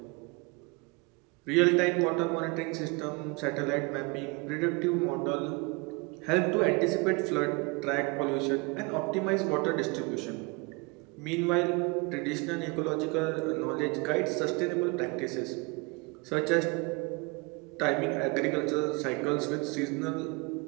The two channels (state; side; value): quieter; left; 28.5 dB